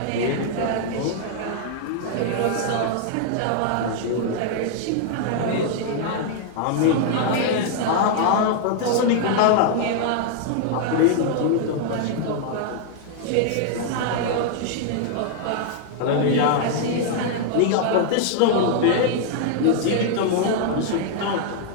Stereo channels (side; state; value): both; different; correlation -0.01